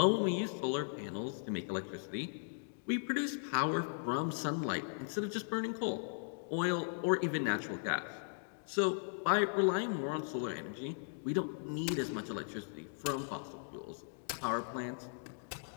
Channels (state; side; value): silent; right; digital silence